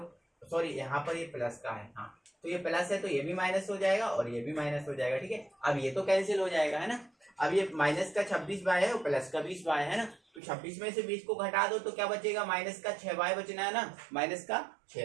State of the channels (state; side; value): drops out; left; at 10.4 s